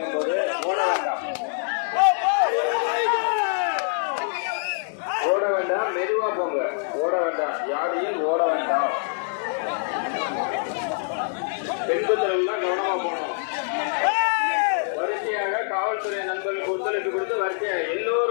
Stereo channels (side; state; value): right; silent; digital silence